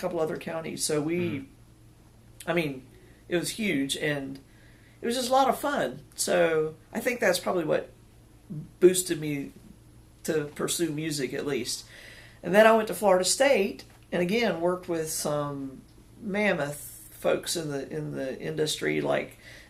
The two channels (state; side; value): identical; both; correlation 1.00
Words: couple other counties. So it was huge, and it was just a lot of fun. So I think that's probably what boosted me to pursue music, at least. And then I went to Florida State, and again worked with some mammoth folks in the industry like